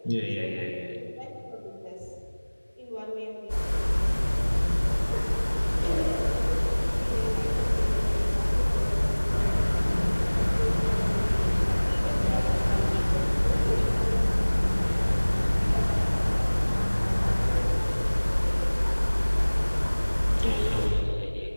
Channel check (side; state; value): both; inverted; correlation -1.00